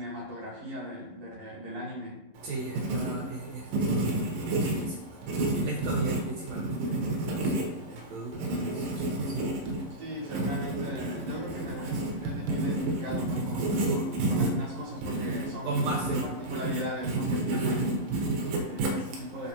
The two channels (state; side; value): late; left; 11 ms